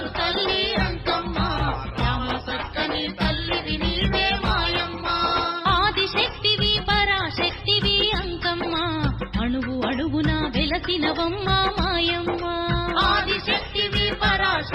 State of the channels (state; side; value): identical; both; correlation 1.00